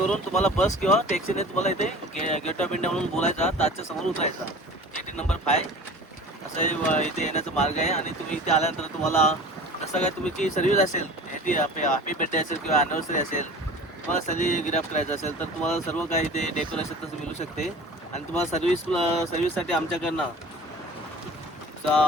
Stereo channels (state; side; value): normal; both; correlation 0.41